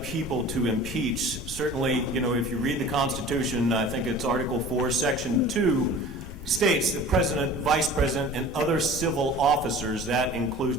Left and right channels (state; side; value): noise; left; rumble, 12 dB below the sound